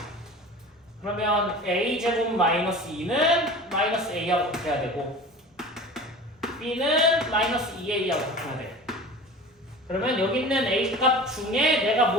그러면 a제곱 마이너스 2는 마이너스 a하고 같아야 되고 b는 마이너스 2a하고 바꿔야 돼. 그러면 여기 있는 a 값 중에 내가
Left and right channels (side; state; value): both; normal; correlation 0.38